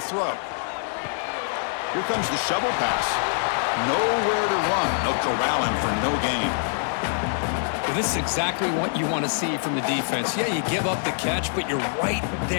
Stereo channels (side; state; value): right; silent; digital silence